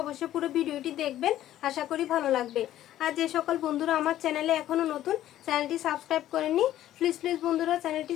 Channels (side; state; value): right; quieter; 13.0 dB